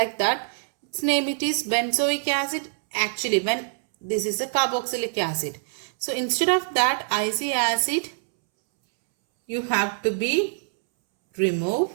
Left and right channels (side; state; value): left; silent; 62 dB below the other